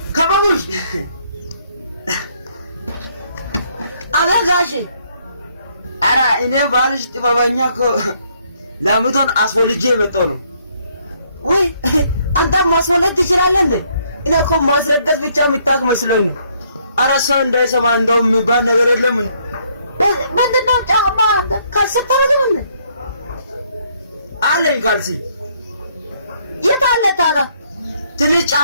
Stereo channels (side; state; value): both; inverted; correlation -0.68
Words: ከበቡሽ አበጋሽ። ኧረ እኔ ባልሽ ጥበበኛ እኮ ላምቷን አስወልጄ የመጣሁ ነው። ወይ አንተ ማስወለድ ትችላለህ እንዴ? እኔ እኮ ማስረገዝ ብቻ የምታውቅ መስሎኝ ነው። ኧረ ሰው እንዳይሰማ እንደው የሚባል ነገር የለም። ምንድነው? ጫማ ካልሲ አታደርግም እንዴ? አለኝ ካልሲ። የት አለ ታዲያ? ትንሽ